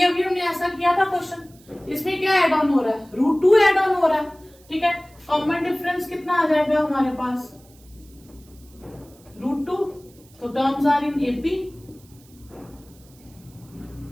अभी हमने ऐसा किया था क्वेश्चन, इसमें क्या एड ऑन हो रहा है √2 एड ऑन हो रहा है। ठीक है, कॉमन डिफरेंस कितना आ जाएगा हमारे पास √2। तो terms are in AP.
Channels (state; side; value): noise; right; hiss, 28 dB below the sound